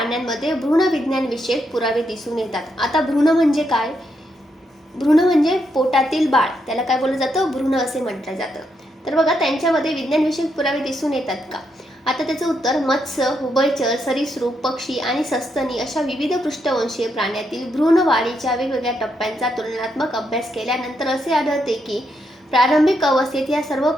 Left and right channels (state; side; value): normal; both; correlation 0.80